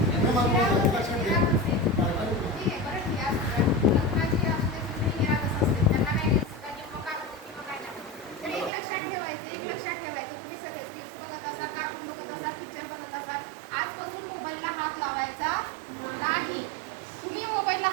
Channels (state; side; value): drops out; left; at 8.7 s